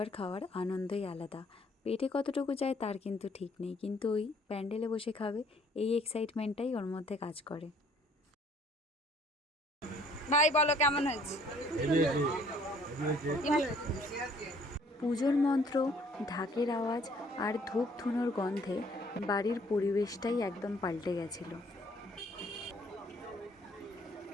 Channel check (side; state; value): both; normal; correlation 0.60